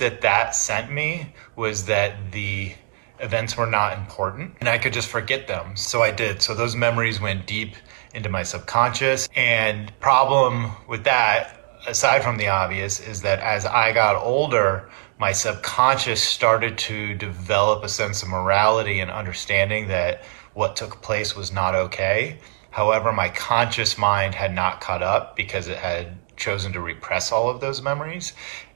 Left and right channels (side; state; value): left; silent; digital silence